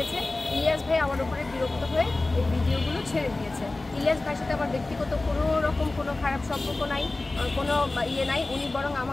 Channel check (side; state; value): right; quieter; 3.1 dB